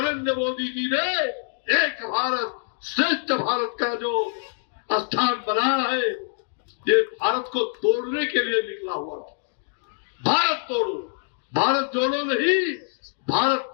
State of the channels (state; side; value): silent; right; digital silence